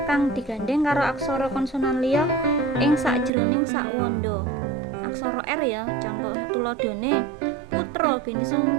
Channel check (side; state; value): left; drops out; at 3.3 s